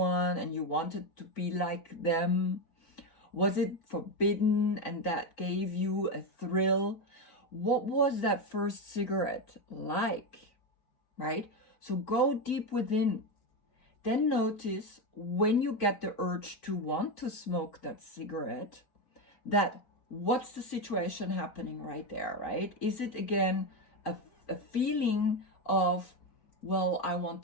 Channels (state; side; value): late; right; 4.0 ms